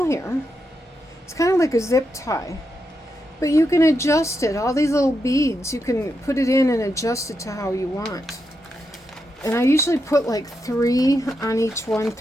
here. It's kind of like a zip tie. But you can adjust it. All these little beads, you can put it in and adjust it to how you want. And I usually put like 3 on each one,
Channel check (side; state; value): both; normal; correlation 0.84